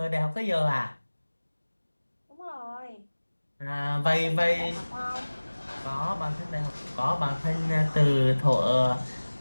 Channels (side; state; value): both; inverted; correlation -1.00